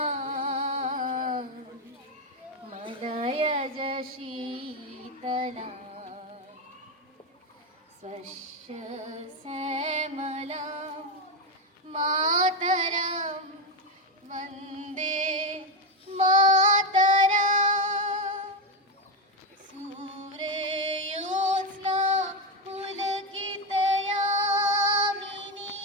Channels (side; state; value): both; normal; correlation 0.09